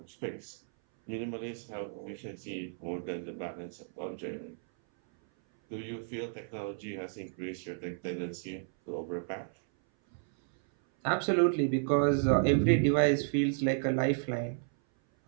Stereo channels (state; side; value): silent; left; 56 dB below the other